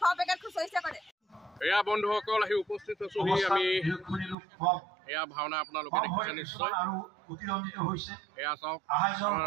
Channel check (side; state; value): left; drops out; at 4.4 s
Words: এয়া বন্ধুসকল আহি উপস্থিত আছোহি আমি। এয়া ভাওনা আপোনালোকে দেখিছে নিশ্চয়। এয়া চাওক,